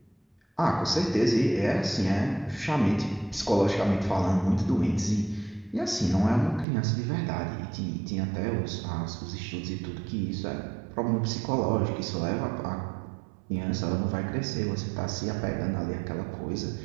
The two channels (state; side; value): drops out; left; at 6.7 s